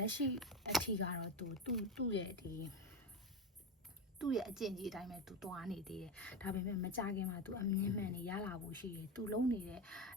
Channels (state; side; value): normal; both; correlation 0.17